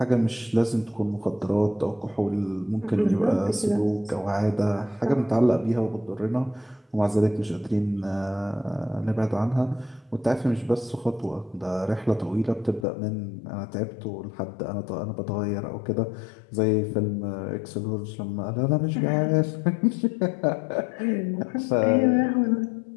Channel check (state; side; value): drops out; right; at 12.9 s